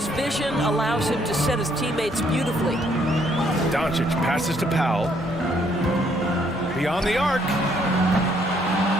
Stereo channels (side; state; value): both; normal; correlation 0.68